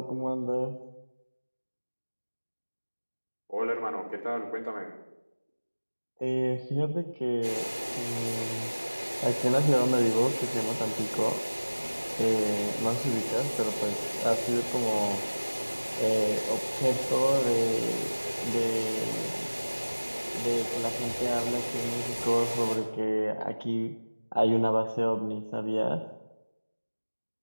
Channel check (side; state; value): both; inverted; correlation -1.00